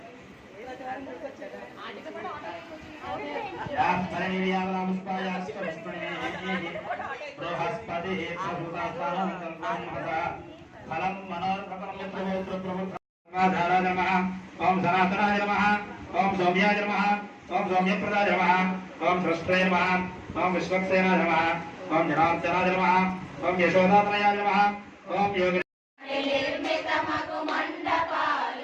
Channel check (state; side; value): identical; both; correlation 1.00